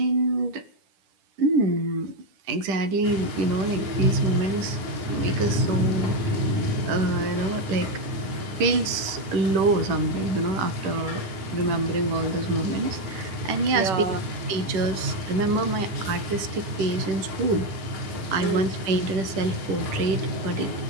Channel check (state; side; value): late; left; 10 ms